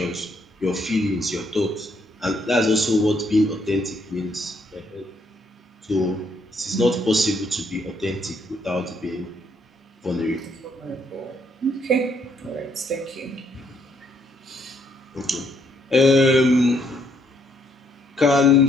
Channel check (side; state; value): both; normal; correlation 0.70